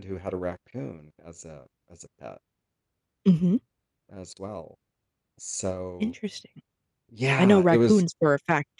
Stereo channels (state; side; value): identical; both; correlation 1.00